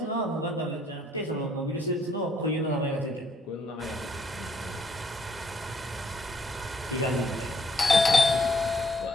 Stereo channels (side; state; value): both; normal; correlation 0.68